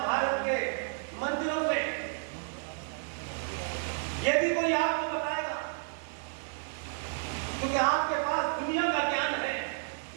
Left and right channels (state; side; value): silent; left; digital silence